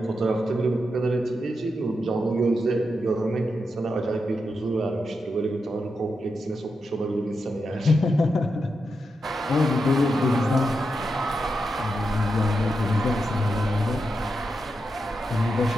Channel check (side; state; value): both; normal; correlation 0.86